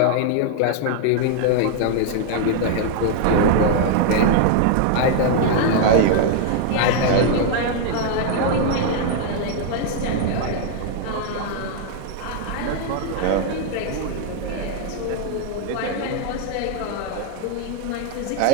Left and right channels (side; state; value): both; different; correlation 0.00